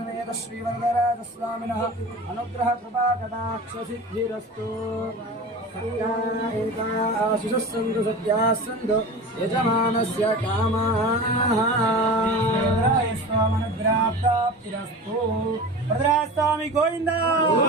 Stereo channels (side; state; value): both; normal; correlation 0.33